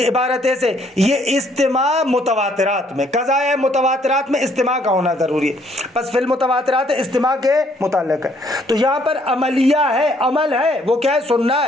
عبارت ایسے، یہ استماع متواترات میں، قضائے متواترات میں استماع کا ہونا ضروری ہے. پس فی المتواترات استماع کے متعلق ہے. تو یہاں پر عملیہ ہے، عمل ہے، وہ کیا ہے؟ سننا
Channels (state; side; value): normal; both; correlation 0.66